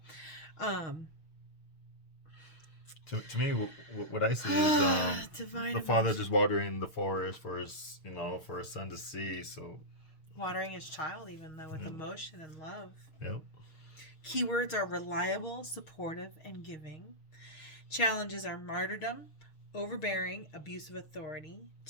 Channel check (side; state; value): right; late; 6.5 ms